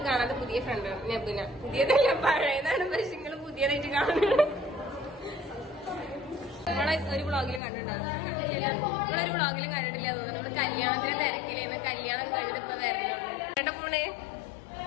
കാണാതെ പുതിയ ഫ്രണ്ട് നബുന. പുതിയതല്ല, പഴയതാണ്. പക്ഷെ നിങ്ങൾ പുതിയതായിട്ട് കാണുന്നത്. നമ്മളെ ഒരു വ്ളോഗിലും കണ്ടിട്ടുണ്ടാവും. നിങ്ങളൊരു വ്ളോഗിലും കണ്ടിട്ടില്ല തോന്നുന്നു. നമ്മള് കല്യാണത്തിന് തിരക്കിലേന്ന്. കല്യാണം കഴിഞ്ഞിട്ട് ഇപ്പൊ വരണുള്ളൂ. കേട്ടോ പോണേ.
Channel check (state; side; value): drops out; right; at 7.6 s